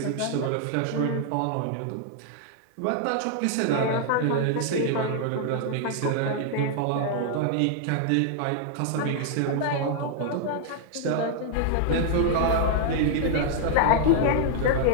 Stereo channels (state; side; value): different; both; correlation 0.00